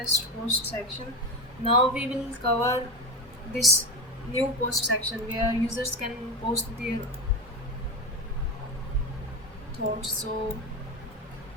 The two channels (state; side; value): normal; both; correlation 0.20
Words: post section. Now we will cover this new post section where users can post their thoughts. So